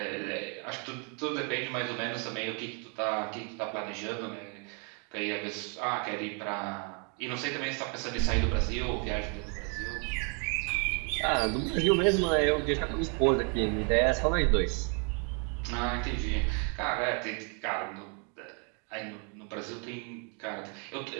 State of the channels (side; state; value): left; quieter; 38.0 dB